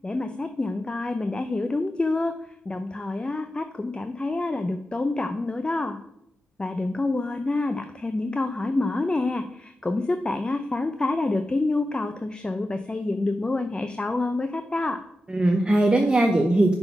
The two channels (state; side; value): normal; both; correlation 0.91